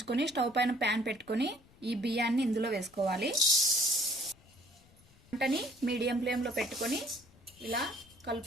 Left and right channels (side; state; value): left; noise; rumble, 27 dB below the sound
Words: స్టవ్ పైన ప్యాన్ పెట్టుకొని ఈ బియ్యాన్ని ఇందులో వేసుకోవాలి. మంటని మీడియం ఫ్లేమ్లో పెట్టుకొని ఇలా